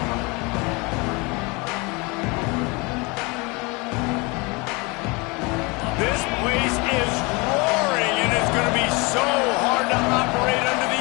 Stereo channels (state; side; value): quieter; right; 27.3 dB